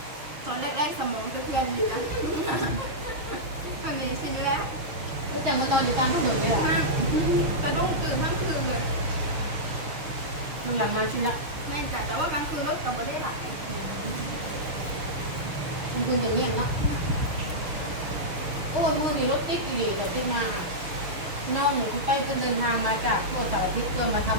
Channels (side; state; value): left; late; 6.6 ms